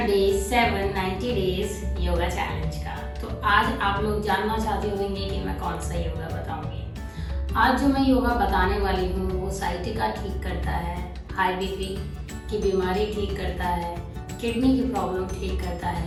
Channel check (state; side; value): identical; both; correlation 1.00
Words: डे 7 90 डेज योगा चैलेंज का। तो आज आप लोग जानना चाहते होंगे कि मैं कौन सा योगा बताऊंगी। आज जो मैं योगा बताने वाली हूँ वो साइटिका ठीक करता है, हाई बीपी की बीमारी ठीक करता है, किडनी की प्रॉब्लम ठीक करता